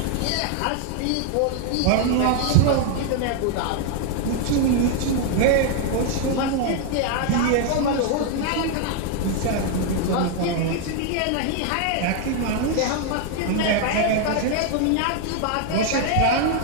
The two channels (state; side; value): different; both; correlation 0.00